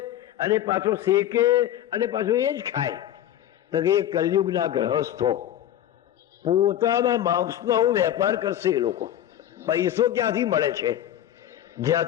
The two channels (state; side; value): quieter; right; 11.7 dB